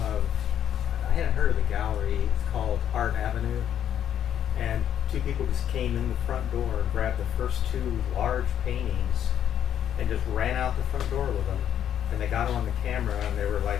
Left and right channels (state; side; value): quieter; right; 9.8 dB